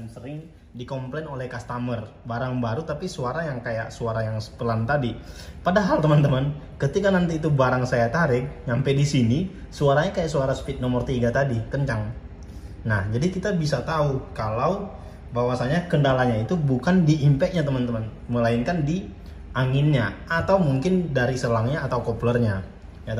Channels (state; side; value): identical; both; correlation 1.00